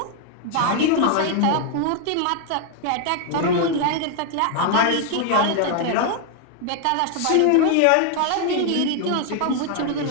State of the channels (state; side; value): different; both; correlation 0.00